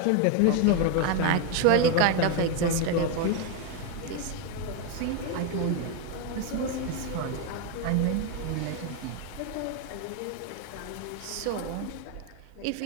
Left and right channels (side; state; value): both; different; correlation 0.01